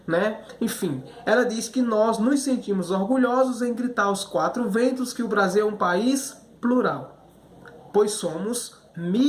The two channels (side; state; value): both; identical; correlation 1.00